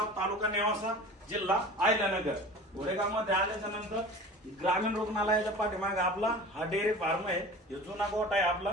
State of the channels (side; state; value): both; normal; correlation 0.39